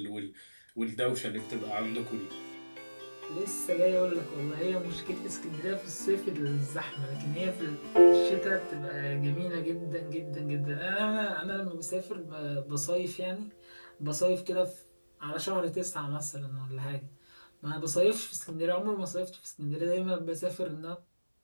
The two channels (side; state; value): both; inverted; correlation -1.00